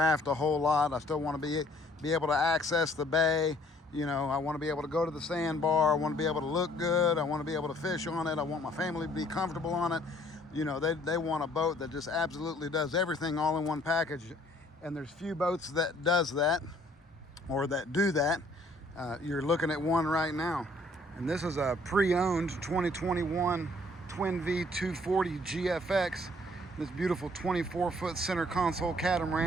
a whole lot. I still want to be able to access the bay. You know, I want to be able to go to the sandbar. I want to be able to look good. I want to be able to fish on it. I want my family to be comfortable on it. You know, they want a boat that just absolutely does everything all in one package. And there's few boats that does that or that do that. You're looking at one right now. And this is a pre-owned 2021 Twin Vee 240 GFX. This beautiful 24-foot center console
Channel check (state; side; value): normal; both; correlation 0.60